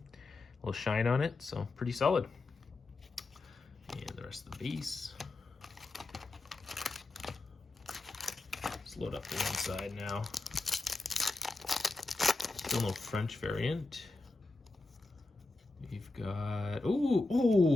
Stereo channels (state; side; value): quieter; right; 3.2 dB